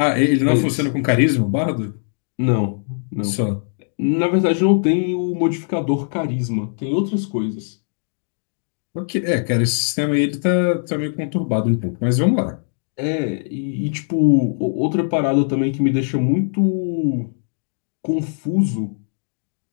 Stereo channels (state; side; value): silent; right; digital silence